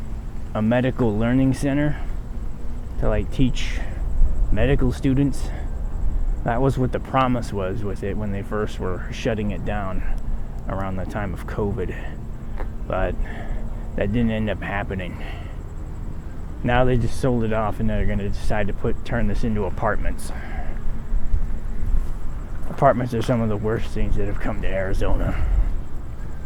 medical learning center to like teach medical students. That was what the promise was with it when they first were shutting it down around the time of COVID, but that didn't end up happening. Now they just sold it off and they're going to decide to turn this into apartments. Apartments are some of the worst things that have come to Arizona.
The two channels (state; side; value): identical; both; correlation 1.00